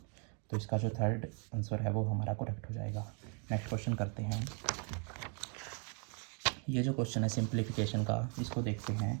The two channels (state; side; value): quieter; left; 38.3 dB